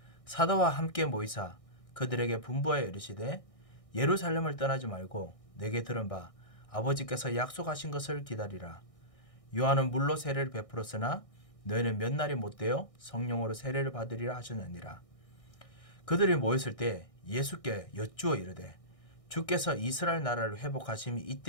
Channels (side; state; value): right; late; 1.6 ms